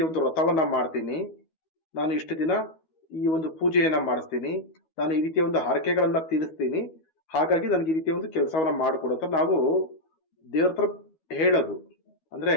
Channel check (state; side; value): late; right; 12 ms